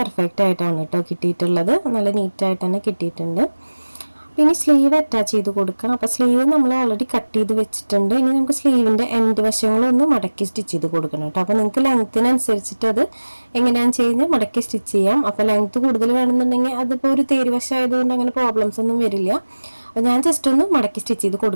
ആയിട്ടാണ് കേട്ടോ കിട്ടിയിട്ടുള്ളത്, നല്ല നീറ്റായിട്ട് തന്നെ കിട്ടിയിട്ടുണ്ട്. ഇനി സ്ലീവ് അറ്റാച്ച് ചെയ്ത് കൊടുക്കാം. അപ്പോൾ സ്ലീവ് നമ്മൾ ഓൾറെഡി കട്ട് ചെയ്ത് വെച്ചിട്ടുണ്ട്. ഇനി നമുക്ക് സ്ലീവിൻ്റെ എൻഡ് വശങ്ങളൊന്ന് മടക്കി സ്റ്റിച്ച് ചെയ്ത് കൊടുക്കണം കേട്ടോ. അപ്പോൾ നിങ്ങൾക്ക് ലെങ്ത്തിനനുസരിച്ചിട്ട് അത് എങ്ങനെയാണെന്ന് ചെയ്യുന്നത് മടക്കി സ്റ്റിച്ച് ചെയ്യാം. അപ്പോൾ ലെങ്ത്ത് കൂടുതൽ വേണമെന്നുണ്ടെങ്കിൽ അതിപ്പോൾ ഒരു തേര് വശമായതുകൊണ്ട് അങ്ങനെ പ്രോബ്ലംസ് ഒന്നും വരില്ല. അപ്പോൾ ഞാൻ ജസ്റ്റ് ഒന്ന് മടക്കി സ്റ്റിച്ച് ചെയ്ത്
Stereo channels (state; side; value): inverted; both; correlation -1.00